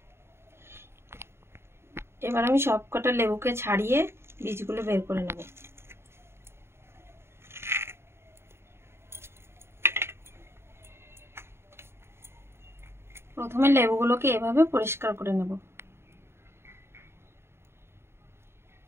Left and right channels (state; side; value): late; left; 0.12 ms